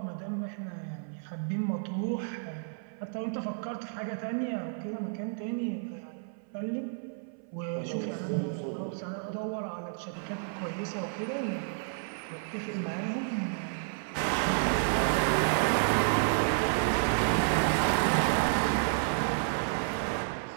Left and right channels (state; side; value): silent; left; 57 dB below the other